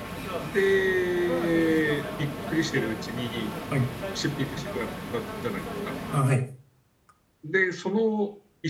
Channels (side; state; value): both; identical; correlation 1.00